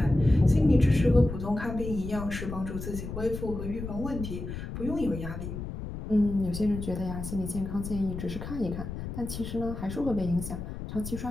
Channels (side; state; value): left; noise; rumble, 7 dB below the sound